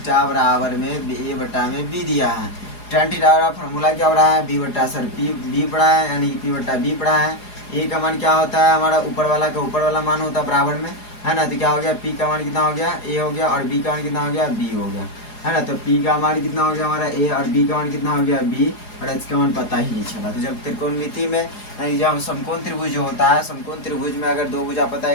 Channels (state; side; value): late; right; 4.8 ms